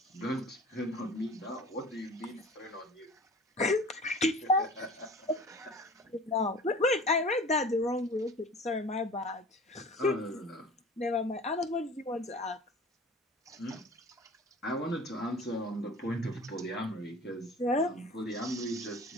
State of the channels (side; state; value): both; normal; correlation 0.42